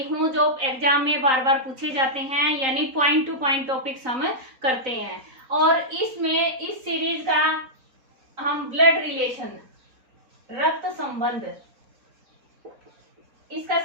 हूँ जो एग्जाम में बार बार पूछे जाते हैं, यानी पॉइंट टू पॉइंट टॉपिक्स हम करते हैं। और इसमें इस सीरीज का हम ब्लड रिलेशन, रक्त संबंध, इसका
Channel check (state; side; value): late; left; 3.9 ms